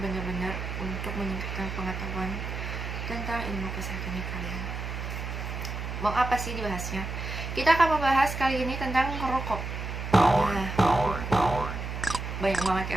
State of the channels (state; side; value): noise; right; hum, 5 dB below the sound